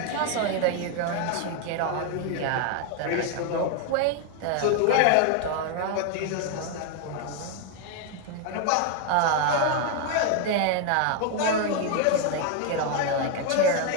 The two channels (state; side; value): different; both; correlation 0.01